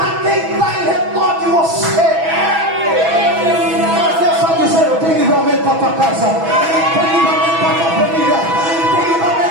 quem está em redor de você. Mas Deus só dizer: eu tenho livramento para a tua casa, tem livramento para a tua família, tem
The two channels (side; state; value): left; late; 6.1 ms